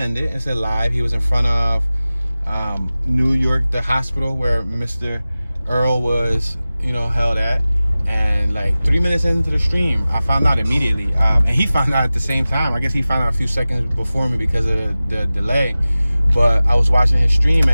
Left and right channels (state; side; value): inverted; both; correlation -0.97